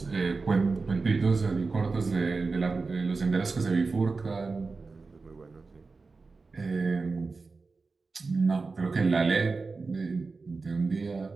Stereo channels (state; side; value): quieter; left; 4.1 dB